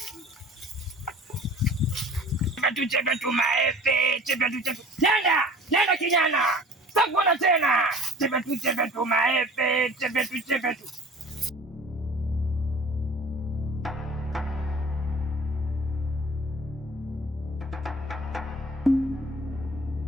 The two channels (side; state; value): both; normal; correlation 0.44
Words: Chepe tu maepe. Nenda kijana. Sitakuona tena. Chepe tu maepe. Chepe tu.